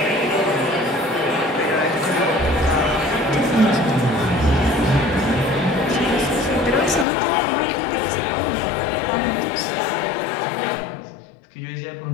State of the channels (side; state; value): right; drops out; at 7.1 s